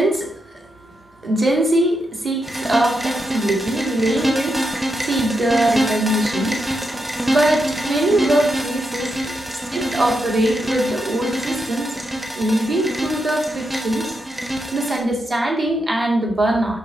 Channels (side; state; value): both; normal; correlation 0.84